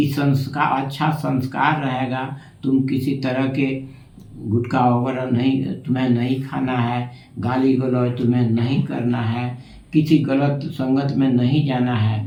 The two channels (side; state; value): both; identical; correlation 1.00